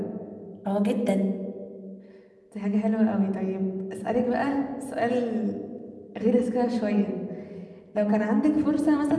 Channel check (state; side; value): identical; both; correlation 1.00